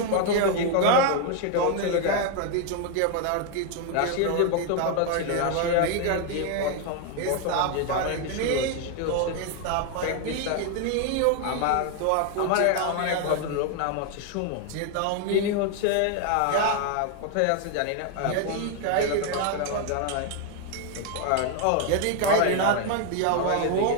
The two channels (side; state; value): both; different; correlation 0.01